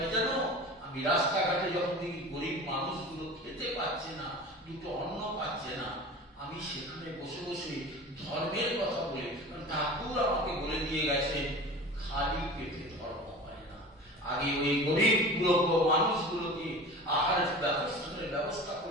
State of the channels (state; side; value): normal; both; correlation 0.36